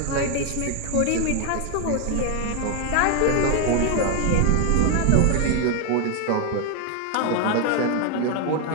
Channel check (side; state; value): both; different; correlation 0.01